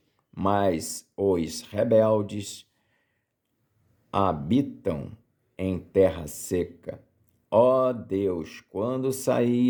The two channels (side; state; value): both; identical; correlation 1.00